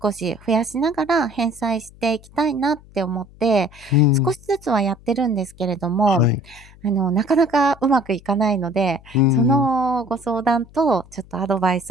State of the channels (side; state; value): left; noise; hum, 23 dB below the sound